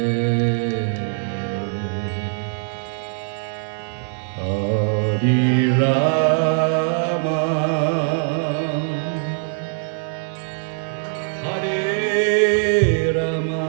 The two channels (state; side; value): silent; left; digital silence